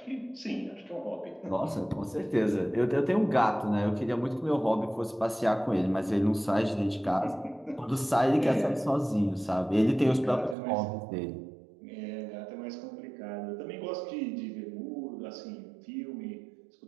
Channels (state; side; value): drops out; left; at 10.6 s